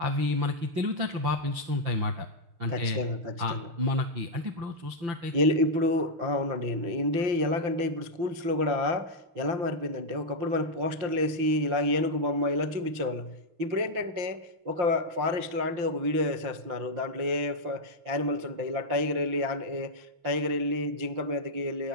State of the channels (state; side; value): late; left; 5.8 ms